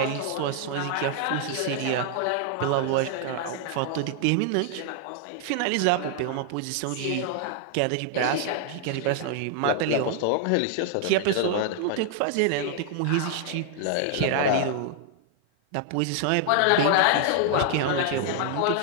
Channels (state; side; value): different; both; correlation 0.00